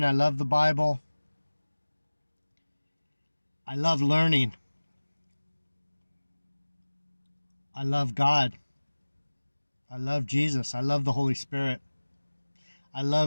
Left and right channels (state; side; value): inverted; both; correlation -1.00